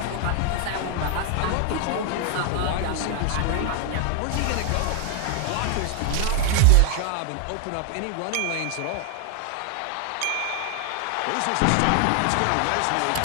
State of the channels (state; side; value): different; both; correlation 0.00